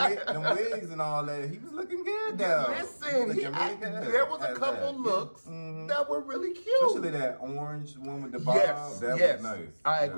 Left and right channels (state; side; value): inverted; both; correlation -1.00